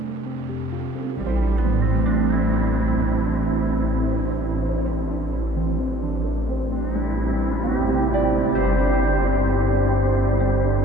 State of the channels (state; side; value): normal; both; correlation 0.56